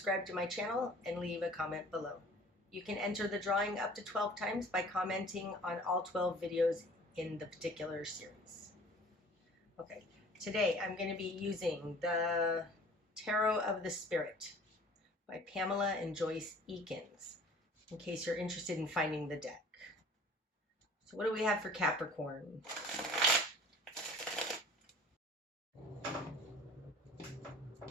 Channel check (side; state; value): both; normal; correlation 0.48